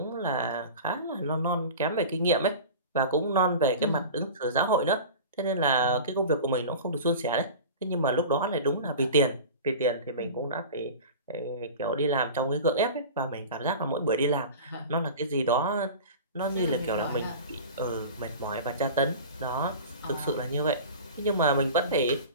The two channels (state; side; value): inverted; both; correlation -0.34